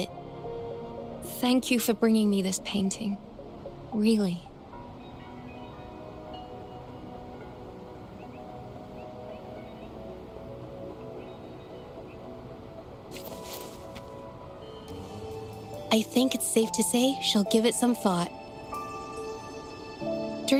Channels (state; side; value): identical; both; correlation 1.00